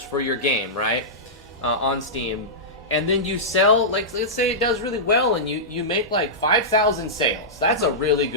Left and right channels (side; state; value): both; normal; correlation -0.14